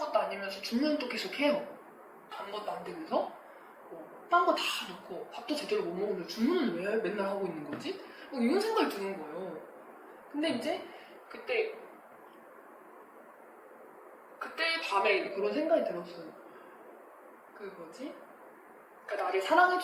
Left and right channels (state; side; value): identical; both; correlation 1.00